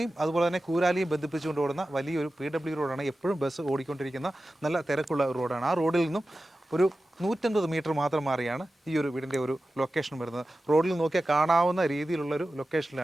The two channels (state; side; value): normal; both; correlation 0.94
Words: അതുപോലെ തന്നെ കൂരാലിയും ബന്ധിപ്പിച്ചുകൊണ്ട് ഓടുന്ന വലിയൊരു PW റോഡാണ്. എപ്പോഴും ബസ് ഓടിക്കൊണ്ടിരിക്കുന്ന നല്ല തിരക്കുള്ള ഒരു റോഡാണ്. ആ റോഡിൽ നിന്നും ഒരു 150 മീറ്റർ മാത്രം മാറിയാണ് ഈ ഒരു വീടിൻ്റെ ഒരു ലൊക്കേഷൻ വരുന്നത്. റോഡിൽ നോക്കിയാൽ കാണാവുന്ന രീതിയിലുള്ളൊരു